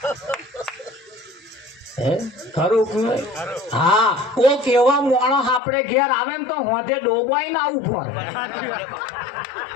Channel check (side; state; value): right; drops out; at 5.6 s